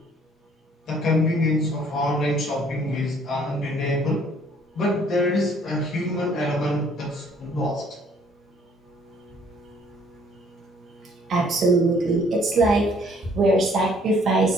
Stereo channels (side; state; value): both; normal; correlation 0.60